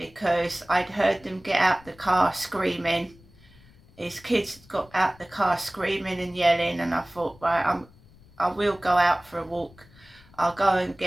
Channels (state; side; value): noise; left; rumble, 26 dB below the sound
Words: I'd heard them get out the car screaming. His kids got out the car screaming and yelling, and I thought, right, I will go out for a walk. I'll go and